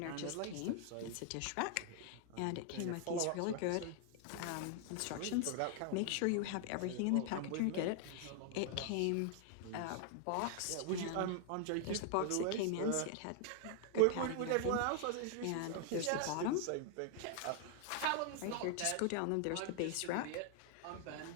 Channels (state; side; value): different; both; correlation 0.00